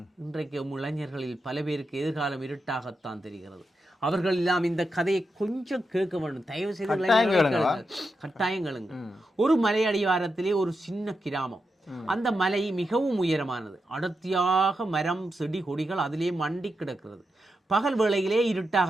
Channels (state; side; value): normal; both; correlation 0.86